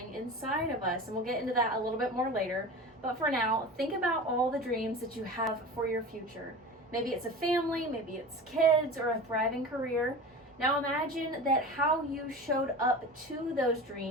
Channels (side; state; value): both; normal; correlation 0.33